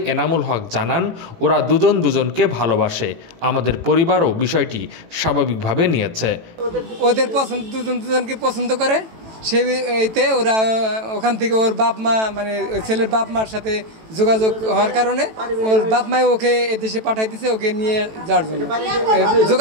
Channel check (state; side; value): late; left; 18 ms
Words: এনামুল হক জানান, ওরা দুজন দুজনকে ভালোবাসে, আমাদের পরিবারও বিষয়টি স্বাভাবিকভাবে নিয়েছে। ওদের পছন্দ, দুজন দুজনকে পছন্দ করে, সেইতে ওরা ওখান থেকে ওর বাপ মা মানে ছেলের বাপ মার সাথে যোগাযোগ হওয়ার কারণে ওর বাপ মাই ওকে এদেশে পাঠাই দিছে ওকে নিয়ে যাওয়ার জন্য।